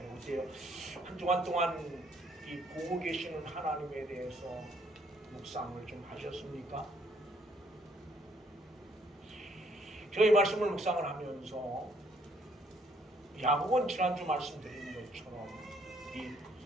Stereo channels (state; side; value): normal; both; correlation 0.66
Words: 어때요? 한 주간 동안 이 보고 계시는 하나님에 대해서 묵상을 좀 하셨습니까? 저희 말씀을 묵상을 하면서 야곱은 지난주 말씀드린 것처럼 이